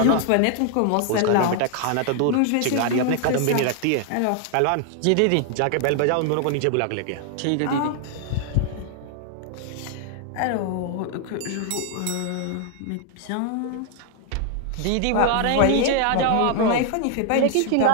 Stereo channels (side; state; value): both; different; correlation 0.00